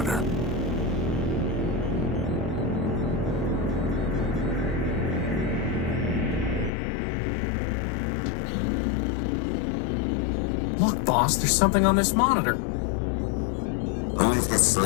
Look, boss, there's something on this monitor. Who is the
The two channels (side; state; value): right; drops out; at 6.7 s